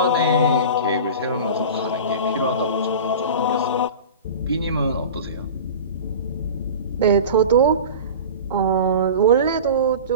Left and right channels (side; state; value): both; inverted; correlation -0.33